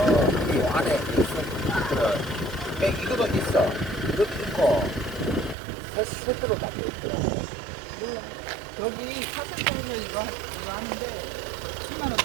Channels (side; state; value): left; drops out; at 5.6 s